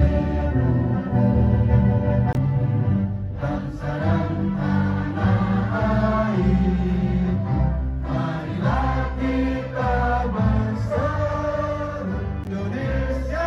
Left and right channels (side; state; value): both; identical; correlation 1.00